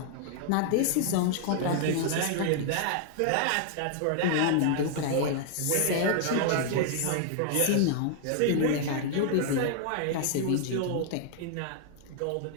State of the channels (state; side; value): different; both; correlation 0.00